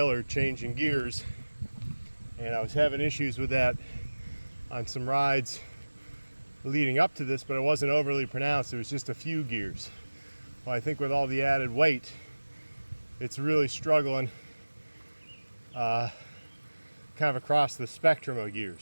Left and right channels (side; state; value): both; inverted; correlation -1.00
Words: changing gears, and I was having issues with that on some rides leading up to this, but it wasn't overly pronounced. It was just a few gears. Well, I think with all the added weight, it's really struggling kind of across the spectrum of